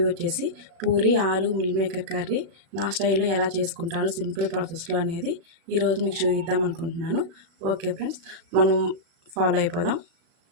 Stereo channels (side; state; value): left; late; 36 ms